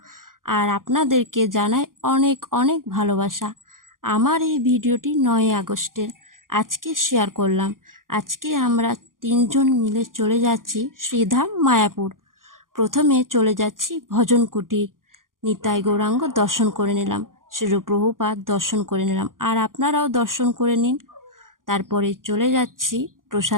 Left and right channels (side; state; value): left; late; 0.91 ms